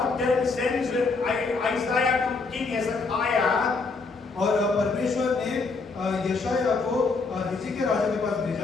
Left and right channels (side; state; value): right; quieter; 4.1 dB